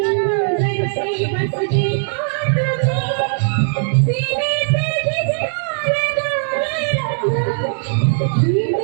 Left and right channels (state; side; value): silent; left; digital silence